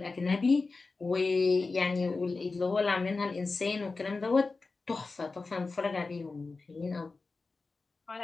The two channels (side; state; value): right; quieter; 3.9 dB